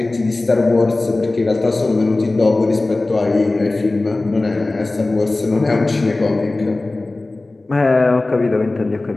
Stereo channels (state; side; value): quieter; right; 3.0 dB